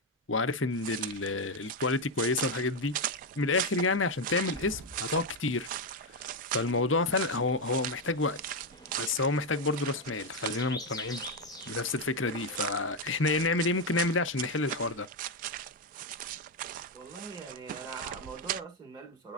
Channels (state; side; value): normal; both; correlation 0.06